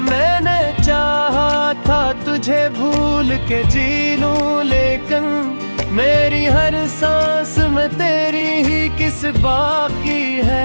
मैंने चाहा था तुझे भूल के जी लूं, लेकिन मेरी हर सांस में तेरी ही किस बाकी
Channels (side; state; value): both; inverted; correlation -1.00